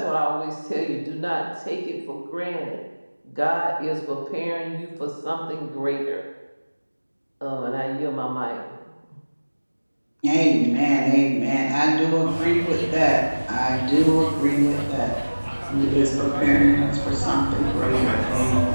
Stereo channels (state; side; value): inverted; both; correlation -1.00